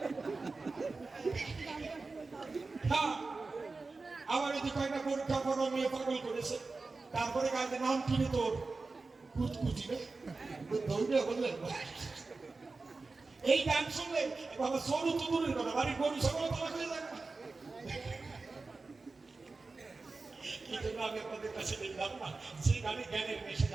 আবার যদি কয়েকটা পরীক্ষা করা মেয়ে পাগল করেছে, তারপরে কাজে নাম কিনে তোর কুচকুচি ধরবে বললেন। এই গান শুনলে বাবা সরু তো দূরের কথা, বাড়ির গরু সকল তালা হয়ে যাবে। এই জন্য আমি আপনাদের কাছে দেখলাম না, যে গানে জ্ঞানের মেশে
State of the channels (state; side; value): quieter; left; 3.8 dB